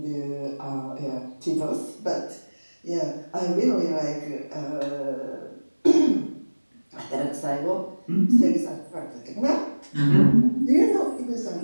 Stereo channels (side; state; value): both; inverted; correlation -1.00